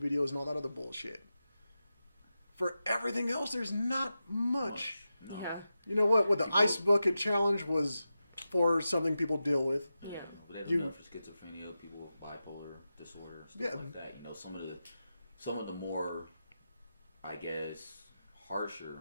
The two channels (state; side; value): inverted; both; correlation -0.92